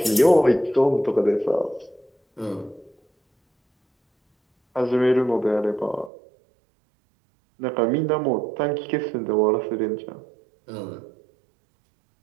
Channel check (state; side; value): drops out; left; at 6.1 s